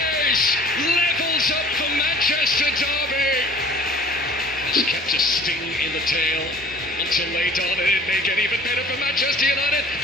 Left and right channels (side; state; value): both; normal; correlation 0.49